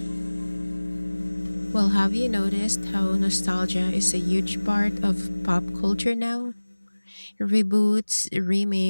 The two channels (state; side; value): inverted; both; correlation -1.00